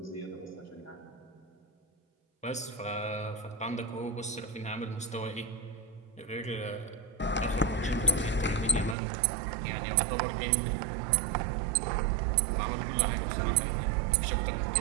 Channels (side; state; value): left; drops out; at 9.0 s